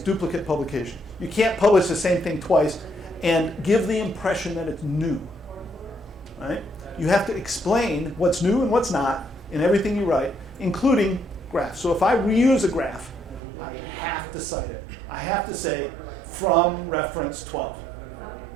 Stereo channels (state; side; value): drops out; left; at 13.4 s